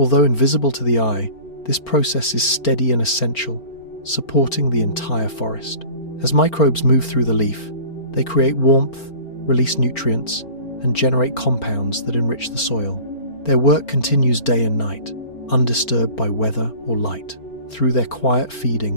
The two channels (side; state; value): right; late; 4.4 ms